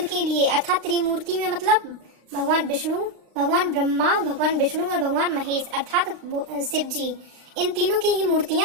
के लिए, अर्थात त्रिमूर्ति में मतलब भगवान विष्णु, भगवान ब्रह्मा, भगवान विष्णु और भगवान महेश अर्थात शिव जी, इन तीनों की ही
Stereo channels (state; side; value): late; left; 36 ms